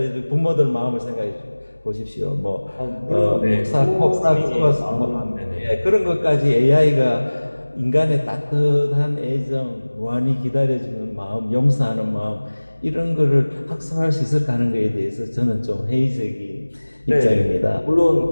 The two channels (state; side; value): inverted; both; correlation -1.00